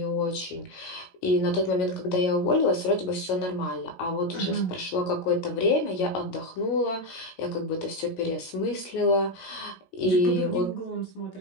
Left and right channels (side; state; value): right; late; 16 ms